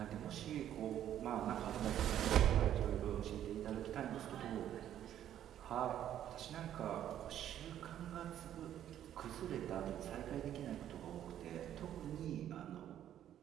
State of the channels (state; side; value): quieter; left; 11.0 dB